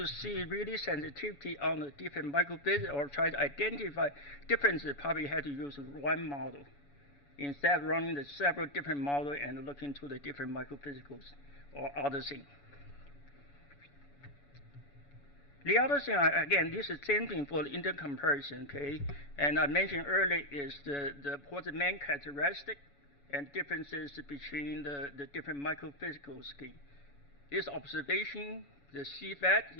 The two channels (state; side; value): late; right; 7.0 ms